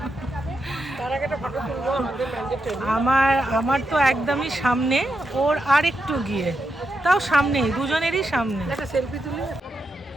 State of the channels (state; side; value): normal; both; correlation 0.85